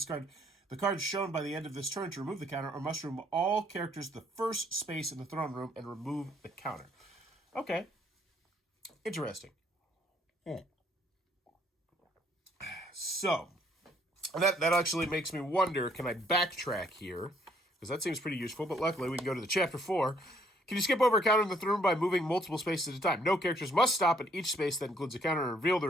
the cards shown by the end of this turn to remove the counter, or must remove all characters to the first space in the throne room and remove the counter. Okay. Interesting. So, that actually makes me wonder, can I backtrack here? Because that seems pretty useful, but luckily we can go to the chapter 4. Can you skip over a counter in the throne room by moving multiple spaces at a time? No characters must stop at each space that includes a counter and reveal the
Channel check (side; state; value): both; normal; correlation 0.66